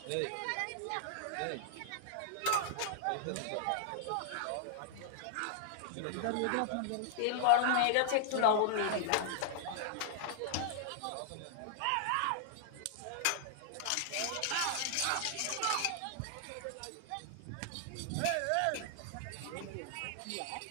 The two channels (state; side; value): different; both; correlation -0.01